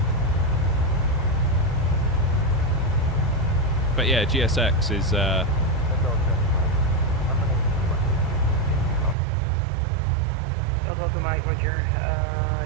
But yeah, GSX is Delta Mike, Roger.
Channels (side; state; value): left; drops out; at 9.2 s